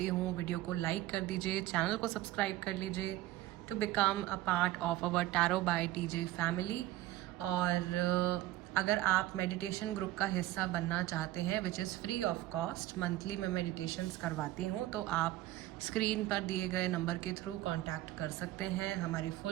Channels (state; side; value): quieter; left; 15.7 dB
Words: हूँ, वीडियो को लाइक कर दीजिए, चैनल को सब्सक्राइब कर लीजिए to become a part of our tarot by TJ family. और अगर आप मेडिटेशन ग्रुप का हिस्सा बनना चाहते हैं which is free of cost, monthly मैं मेडिटेशंस करवाती हूँ, तो आप स्क्रीन पर दिए गए नंबर के थ्रू कांटेक्ट कर सकते हैं। हमारी